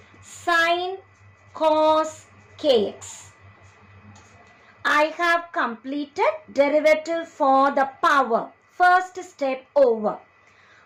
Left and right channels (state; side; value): identical; both; correlation 1.00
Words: sine cos kx. I have completed derivative for the power. First step over.